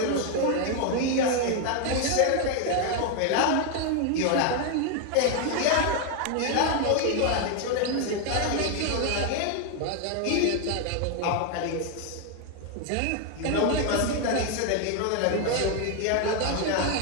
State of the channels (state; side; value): different; both; correlation 0.01